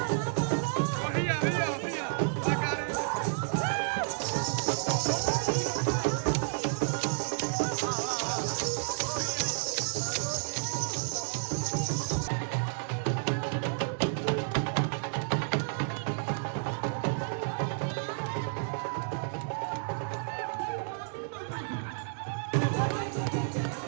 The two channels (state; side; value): silent; left; digital silence